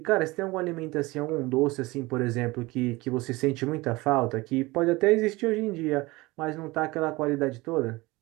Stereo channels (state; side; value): quieter; left; 21.8 dB